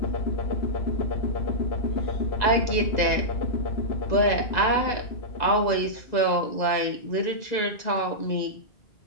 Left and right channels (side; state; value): right; late; 2.0 ms